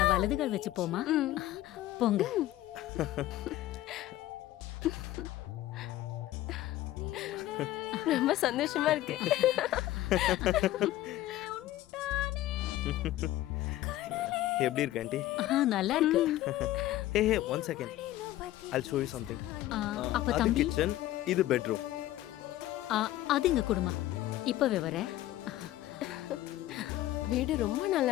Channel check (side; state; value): right; quieter; 14.9 dB